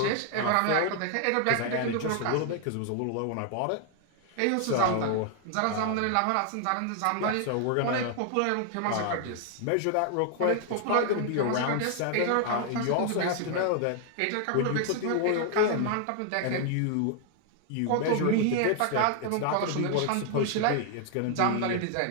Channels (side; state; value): both; different; correlation 0.00